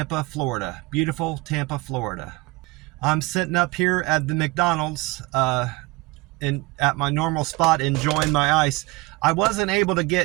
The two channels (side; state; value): left; quieter; 22.9 dB